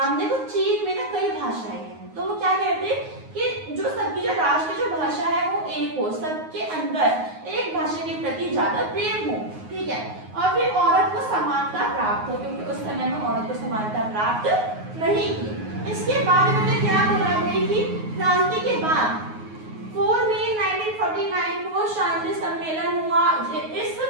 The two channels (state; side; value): late; left; 9.5 ms